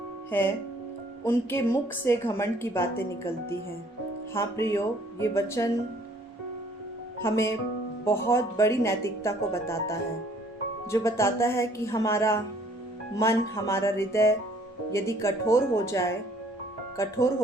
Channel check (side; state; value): both; normal; correlation 0.60